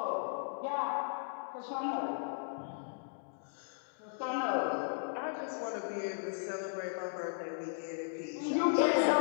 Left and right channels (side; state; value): right; silent; digital silence